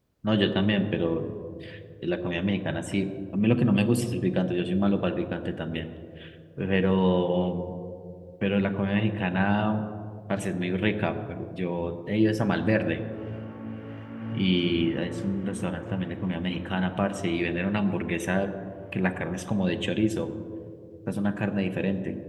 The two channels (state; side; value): identical; both; correlation 1.00